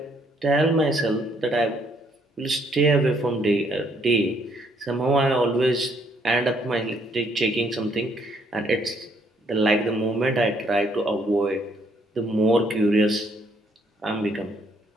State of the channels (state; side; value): normal; both; correlation 0.68